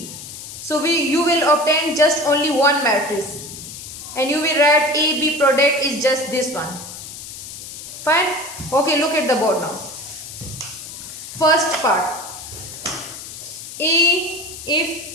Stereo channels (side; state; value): left; noise; hiss, 11 dB below the sound